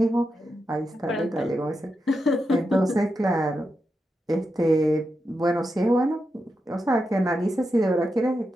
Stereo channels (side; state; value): both; normal; correlation 0.87